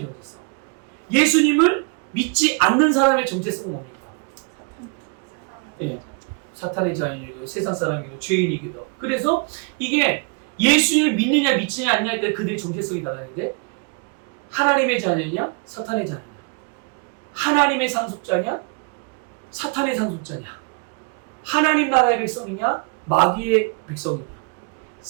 예수님을 믿지 않는 사람의 정체성은 뭡니까? 예, 사탄의 자녀이고 세상 사람이고 죄인이기도. 그래서 이게 예수를 믿느냐 믿지 않느냐에 따라 그들의 정체성이 달라지는데 하나님의 자녀냐 사탄의 자녀냐, 하나님의 상속자냐 사탄의 상속자냐, 하나님 나라의 백성이냐 마귀의 백성이냐,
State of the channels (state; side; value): quieter; left; 34.7 dB